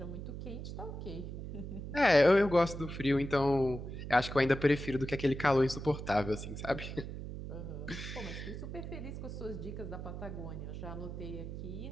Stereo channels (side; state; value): right; noise; hum, 8 dB below the sound